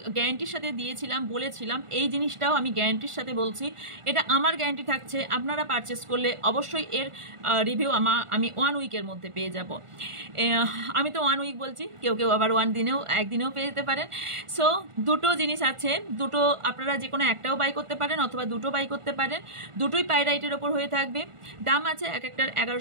গ্যারান্টির সাথে দিয়েছিলাম, বলেছিলাম, এই জিনিসটাও আমি গ্যারান্টির সাথে বলছি। এটা আমার গ্যারান্টি থাকছে, আপনারা পারচেস করলে অবশ্যই এর রিভিউ আমি 1 উইকের মধ্যে পেয়ে যাব। আমি তো 1 উইক বলছি, কেউ কেউ আবার 1 দিনেও পেয়ে যেতে পারেন। সো দুটো জিনিস আছে, দুটো আপনারা যে কোনো একটাও বাই করতে পারেন, অথবা দুটো বাই করতে পারেন, দুটোই পাইরাইটের ওপর হয়ে থাকবে। দাম আছে এক একটার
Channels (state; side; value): late; left; 1.4 ms